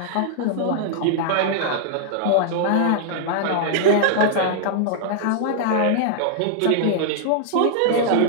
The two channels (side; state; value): both; different; correlation -0.01